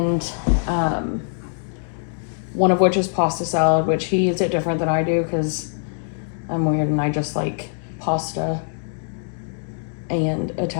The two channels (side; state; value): right; silent; digital silence